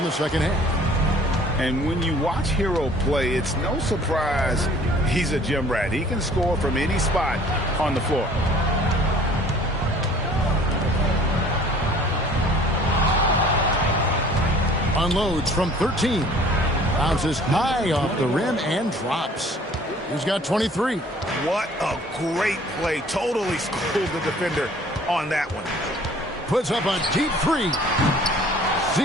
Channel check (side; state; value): both; normal; correlation 0.52